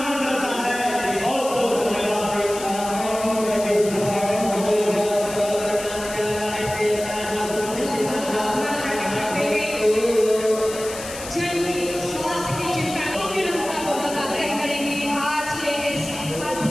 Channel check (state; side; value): noise; left; hiss, 11 dB below the sound